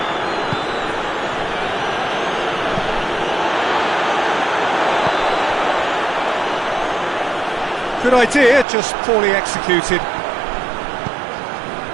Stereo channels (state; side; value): drops out; left; at 8.7 s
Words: Good idea, just poorly executed.